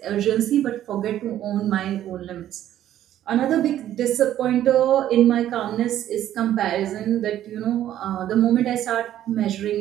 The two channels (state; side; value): quieter; left; 12.0 dB